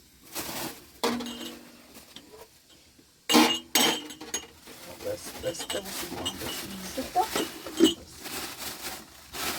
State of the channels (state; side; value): identical; both; correlation 1.00